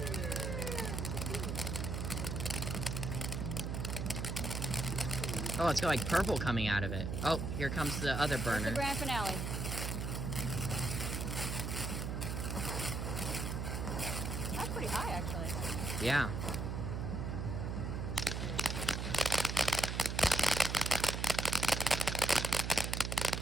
Oh, it's got like purple coming out of it. Oh, here comes the other That's the burner. grand finale. That's pretty high, actually. Yeah.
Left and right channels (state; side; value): noise; right; hum, 2 dB below the sound